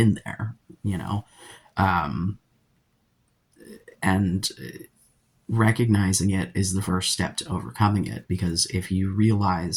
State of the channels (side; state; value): both; identical; correlation 1.00